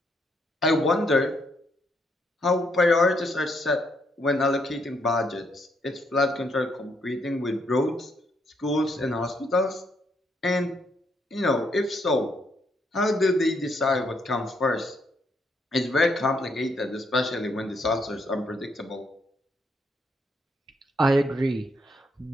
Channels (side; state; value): both; normal; correlation 0.74